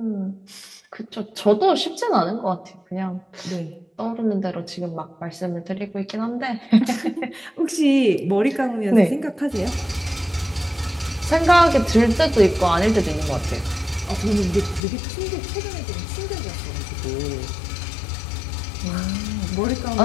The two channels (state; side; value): drops out; right; at 14.8 s